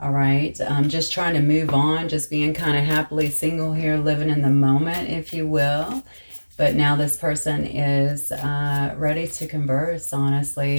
All right, just trying to move on, just being kind of happily single here, living in the moment, if you will. But now this person is ready to converse,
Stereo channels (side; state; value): both; inverted; correlation -1.00